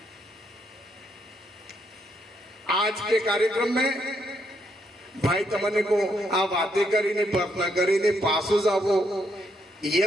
आज के कार्यक्रम में भाई तमने को आ बातें करी ने प्रार्थना करी ने पासो जावो, ये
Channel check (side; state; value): both; normal; correlation 0.76